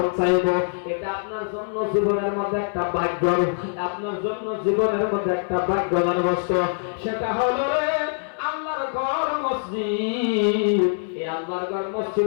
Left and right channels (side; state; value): right; silent; 62 dB below the other